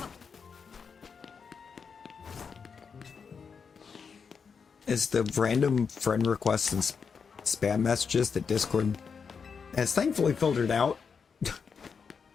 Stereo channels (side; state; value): right; quieter; 5.9 dB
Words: is the random friend requests and spam messages that Discord has thankfully filtered out